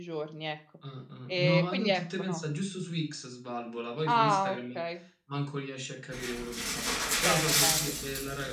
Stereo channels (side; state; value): both; identical; correlation 1.00